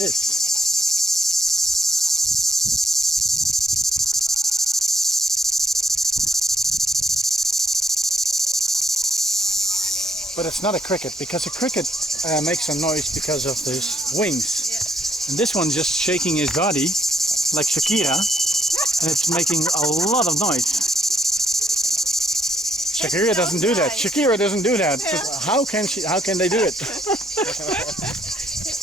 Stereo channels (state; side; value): normal; both; correlation 0.71